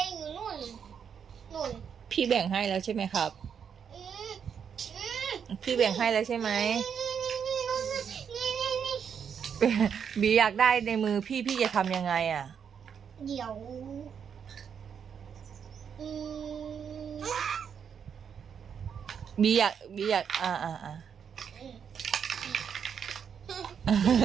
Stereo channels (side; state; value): left; quieter; 7.4 dB